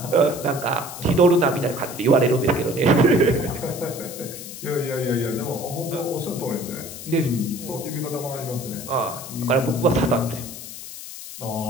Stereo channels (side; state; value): left; noise; hiss, 11 dB below the sound